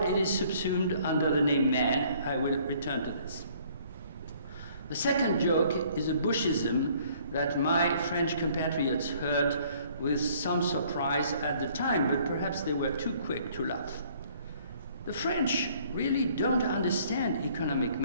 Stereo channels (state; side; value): inverted; both; correlation -0.59